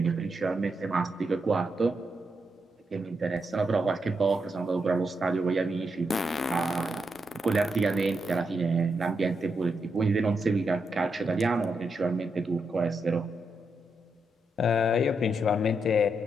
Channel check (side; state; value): both; normal; correlation 0.83